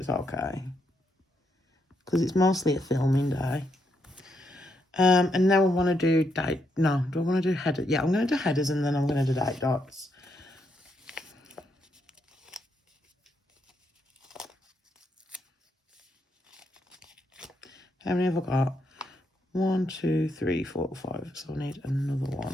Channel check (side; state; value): both; normal; correlation 0.78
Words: okay. Because it's mostly a filming day. And now I want to do date. No, do I want to do headers? Yeah, I'm going to do headers, and then I'm going to do date dots. How many have I got? 1, 2, 3, 4, 5. So I need another